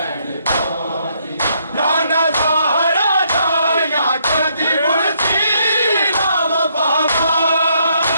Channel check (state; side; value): inverted; both; correlation -0.72